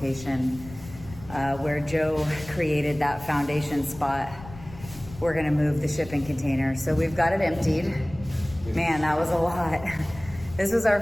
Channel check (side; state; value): left; noise; rumble, 17 dB below the sound